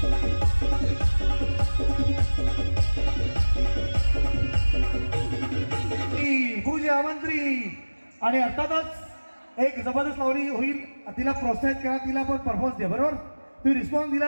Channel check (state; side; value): inverted; both; correlation -1.00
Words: पूजा मंत्री आणि अर्थातच एक जबरदस्त लावणी होईल. तिला प्रोत्साहित करा. तिला पण परफॉर्मन्स द्या. बरोबर? तुम्ही रिस्पॉन्स